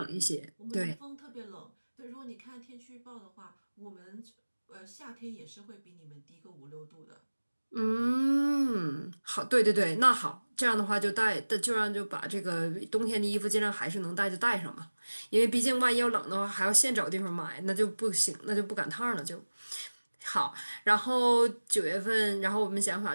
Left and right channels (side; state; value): both; inverted; correlation -1.00